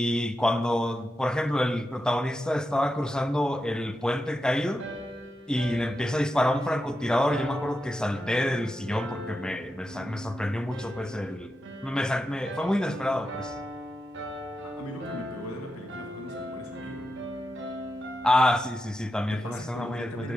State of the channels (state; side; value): normal; both; correlation 0.88